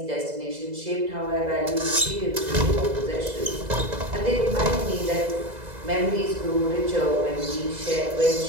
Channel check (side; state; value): left; late; 2.0 ms